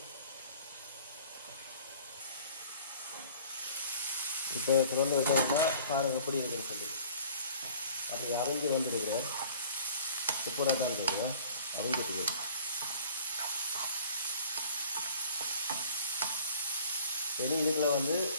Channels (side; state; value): both; inverted; correlation -0.49